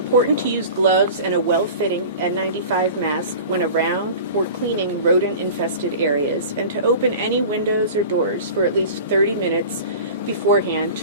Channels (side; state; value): both; inverted; correlation -0.37